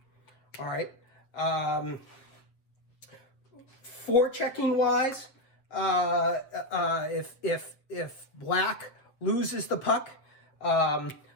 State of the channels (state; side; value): late; right; 7.4 ms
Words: All right. Forechecking wise, if black loses the puck,